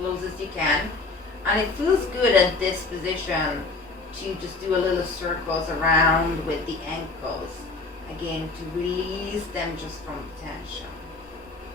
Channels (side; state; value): right; quieter; 3.7 dB